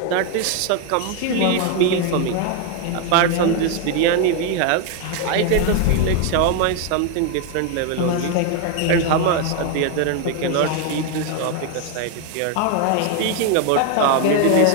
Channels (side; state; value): both; different; correlation 0.01